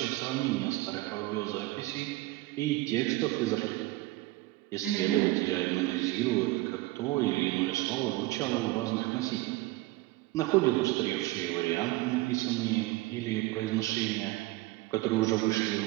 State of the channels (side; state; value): left; quieter; 19.3 dB